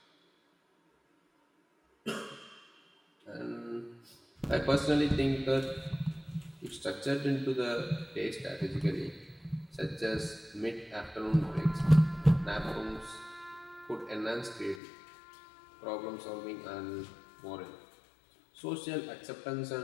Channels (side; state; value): right; drops out; at 14.8 s